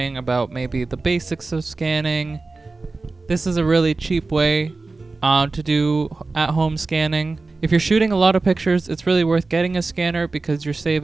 about maybe the basics of scanning. This is a really cheap way to do at-home scanning. If you're shooting a lot of pictures, it's really worth getting a scanner because you're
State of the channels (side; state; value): left; quieter; 3.6 dB